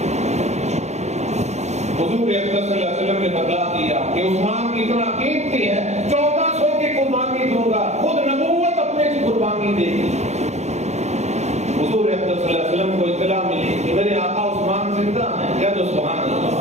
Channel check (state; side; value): late; left; 0.33 ms